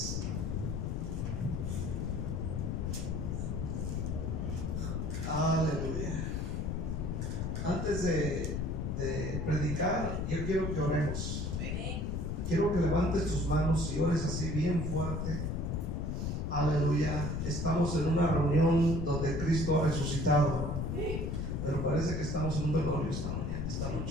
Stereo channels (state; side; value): noise; left; rumble, 1 dB below the sound